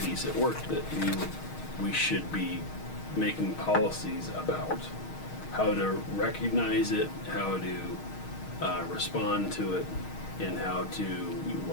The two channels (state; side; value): late; right; 6.4 ms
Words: at work that we should be making policies about how to recognize it, how to respond to it, and how to,